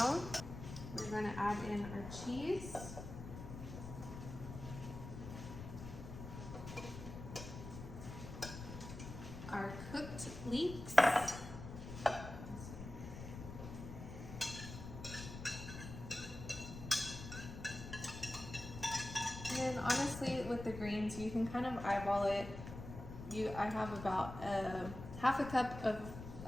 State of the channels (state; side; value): noise; left; rumble, 10 dB below the sound